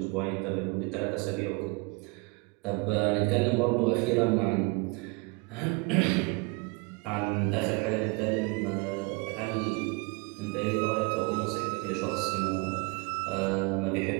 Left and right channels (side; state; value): left; quieter; 27.8 dB